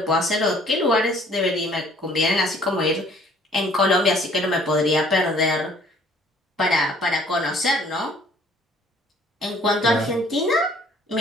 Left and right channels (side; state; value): both; normal; correlation 0.57